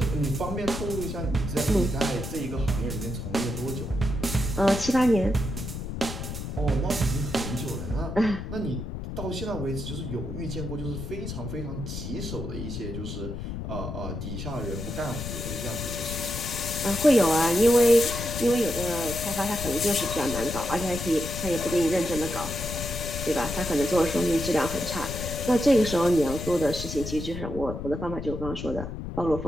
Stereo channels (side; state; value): left; noise; rumble, 7 dB below the sound